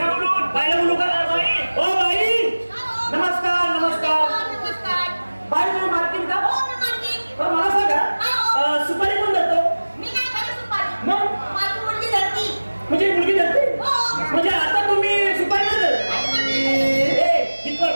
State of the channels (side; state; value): both; inverted; correlation -1.00